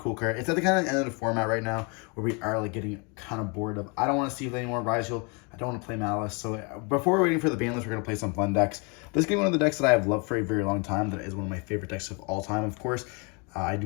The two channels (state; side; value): quieter; right; 32.4 dB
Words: card. It's at the kind of end of the format right now where we are like getting kind of bored of. I don't want to see any more Rise Heal. I don't want to play Malice. So before we're waiting for the ban list, we're going to play some fun decks. This is going to be one of the decks that I have loved for a very long time. That is one of my favorite decks of all time, of course. I